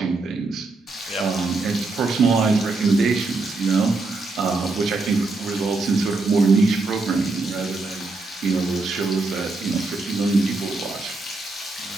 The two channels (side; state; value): left; quieter; 3.5 dB